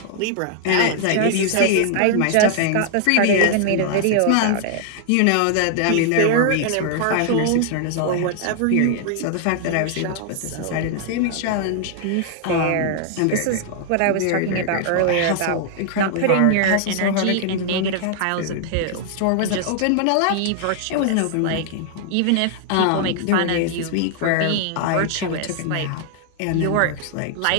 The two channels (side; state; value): both; different; correlation -0.01